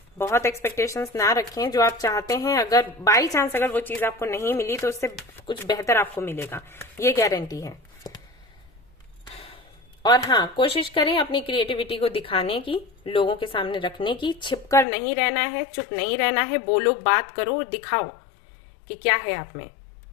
बहुत एक्सपेक्टेशंस ना रखें। जो आप चाहते हैं, अगर बाई चांस अगर वो चीज आपको नहीं मिली, तो उससे कुछ बेहतर आपको मिलेगा, ये गारंटी है। और हाँ, कोशिश करें अपनी क्रिएटिविटी को दिखाने की, लोगों के सामने रखने की। छिपकर नहीं रहना है, चुप नहीं रहना है, बोलो, बात करो, दिखाओ कि क्या है आप में।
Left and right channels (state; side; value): drops out; right; at 14.9 s